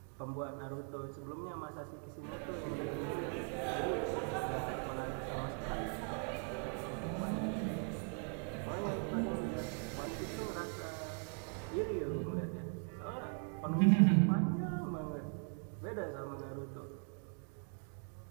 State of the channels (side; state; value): left; quieter; 39.6 dB